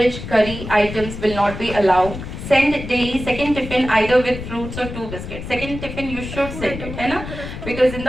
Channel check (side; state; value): left; noise; rumble, 9 dB below the sound